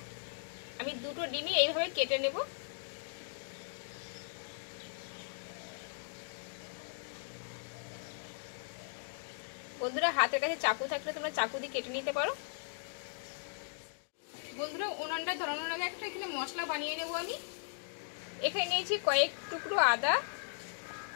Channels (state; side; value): silent; right; digital silence